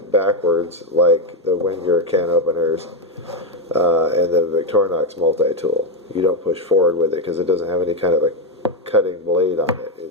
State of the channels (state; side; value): normal; both; correlation 0.05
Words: backwards like the Wenger can openers and the Victorinox multi-tool. You don't push forward with it because it doesn't have any kind of a cutting blade on it.